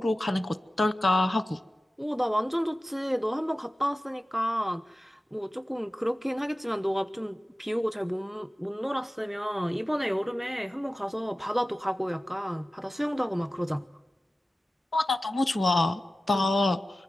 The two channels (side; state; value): both; normal; correlation 0.95